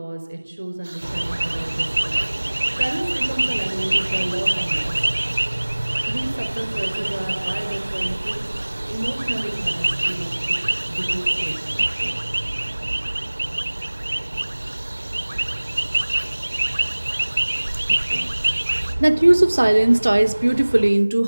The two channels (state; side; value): inverted; both; correlation -1.00